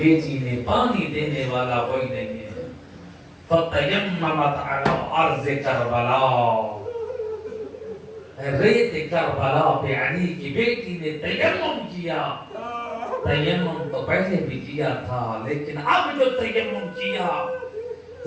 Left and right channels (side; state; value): both; identical; correlation 1.00